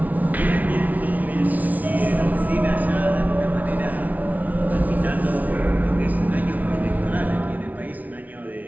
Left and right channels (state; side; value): late; left; 0.075 ms